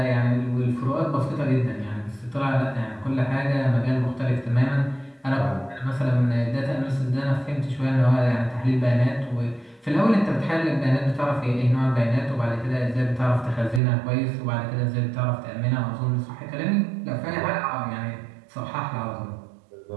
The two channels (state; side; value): drops out; left; at 13.8 s